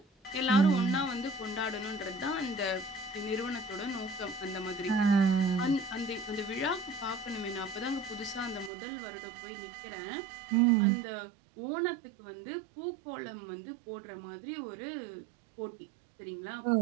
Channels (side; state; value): left; drops out; at 8.7 s